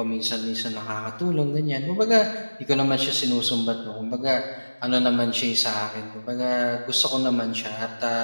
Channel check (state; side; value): inverted; both; correlation -1.00